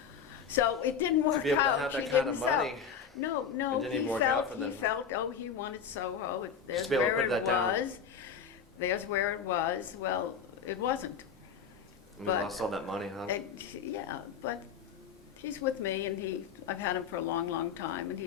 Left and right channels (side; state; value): right; quieter; 6.7 dB